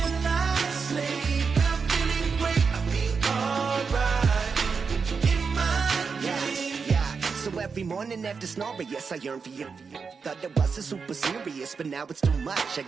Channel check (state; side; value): quieter; left; 5.4 dB